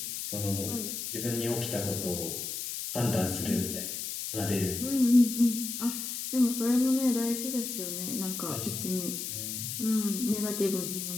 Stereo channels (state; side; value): noise; left; hiss, 5 dB below the sound